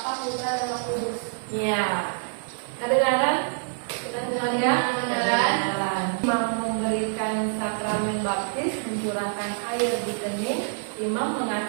Putra, dan Roh Kudus. Ya. Kedengaran? Kedengaran ya? Kedengaran. Imam memberikan sakramen baptis, mencurahkan air di kening. Imam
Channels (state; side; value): silent; left; digital silence